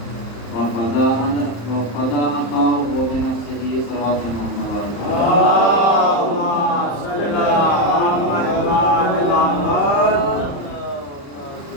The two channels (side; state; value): right; late; 35 ms